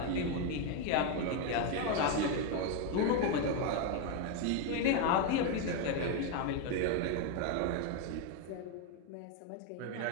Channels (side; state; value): both; different; correlation 0.02